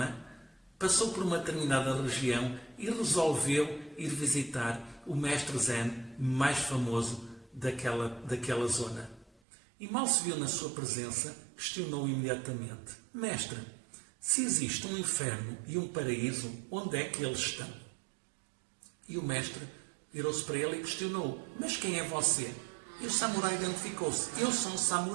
passou por uma determinada região e resolveu ir visitar o mestre Zen mais famoso daquela zona. E mal se viu na sua presença, questionou imediatamente: mestre, se existe um inferno e um paraíso, onde é que eles estão? E o mestre virou-se para ele e questionou: mas quem é você? E o samurai identificou-se: eu sou um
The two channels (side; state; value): left; drops out; at 9.3 s